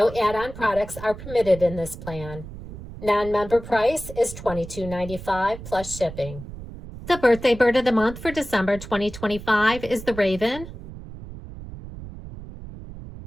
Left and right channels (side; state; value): right; noise; rumble, 13 dB below the sound